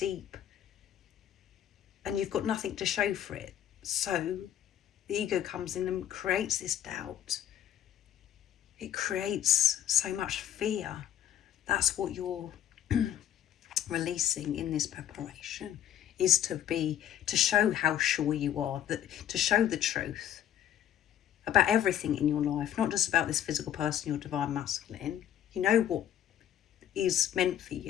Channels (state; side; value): quieter; right; 10.6 dB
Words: And you've got nothing to show for it. So the ego comes in and creates this doubt. It creates so much fear. That's what you're releasing in this preparation, is to show how sure you are, to show the truth about everything in your life, not just about this physical person, your Divine Masculine. You know what is meant for